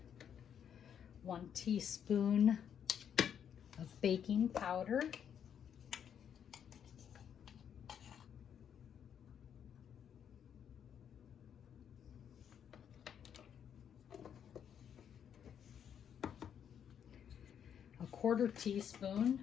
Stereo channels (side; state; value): right; quieter; 8.5 dB